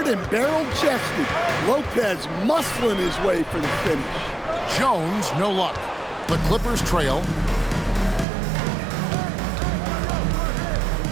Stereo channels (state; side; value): drops out; left; at 8.2 s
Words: and barrel-chested. Lopez muscling his way for the finish. Jones, no luck. The Clippers trail.